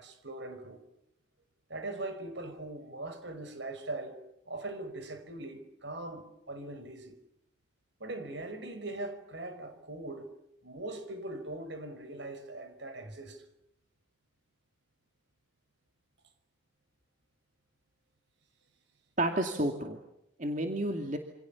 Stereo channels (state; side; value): normal; both; correlation 0.16